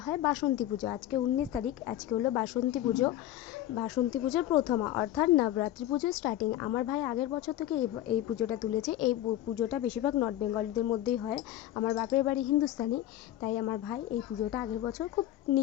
হয় বাসন্তী পুজো। আজকে 19 তারিখ, আজকে হলো বাসন্তী পুজো। বাসন্তী পুজোর প্রথমা অর্থাৎ নবরাত্রি পুজোর স্টার্টিং। আমার ভাই আগের বছর থেকে এই পুজোটা তুলেছে। এই পুজোটা বেশিরভাগ নর্থ বেঙ্গলিদের মধ্যেই হয়। আমার বাপের বাড়ি হিন্দুস্তানি, তাই আমার ভাই এই পুজোটা আগের বছর খুব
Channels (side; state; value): right; quieter; 13.2 dB